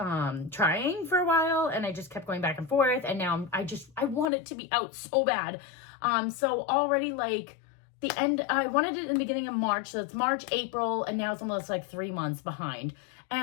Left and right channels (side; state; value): right; drops out; at 4.2 s